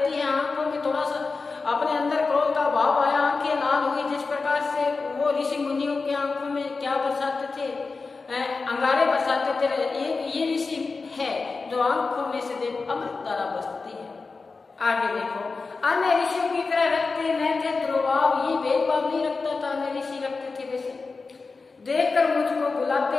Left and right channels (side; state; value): right; quieter; 4.2 dB